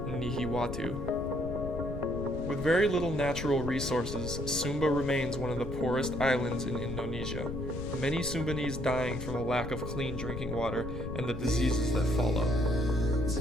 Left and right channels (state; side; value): noise; left; rumble, 6 dB below the sound